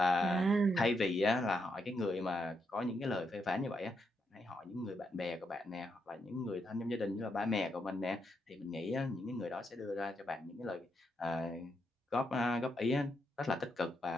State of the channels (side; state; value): both; normal; correlation 0.80